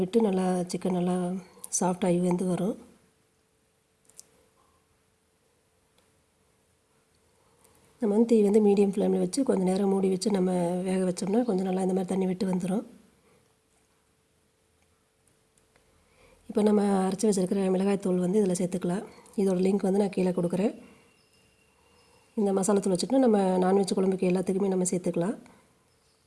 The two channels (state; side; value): identical; both; correlation 1.00